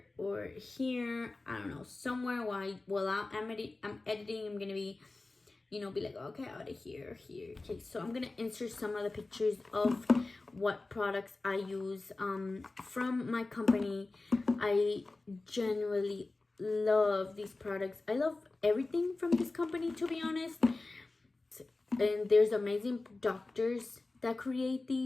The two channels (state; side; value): quieter; right; 3.3 dB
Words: or here, I don't know, somewhere while I'm editing. I'm gonna be, be like, okay, out of here. Okay, so I'm gonna insert some of the pictures of what products I use from my company. I genuinely love these products. I love everything from this company, to be honest. And there's amazing doctors that create